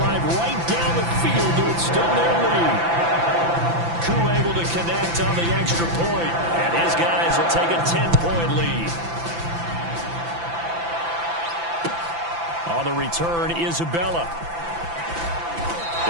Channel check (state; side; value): late; left; 5.9 ms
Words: right down the field to extend their lead. Koo able to connect on the extra point, and his guys will take a 10-point lead. On the return, Isabella.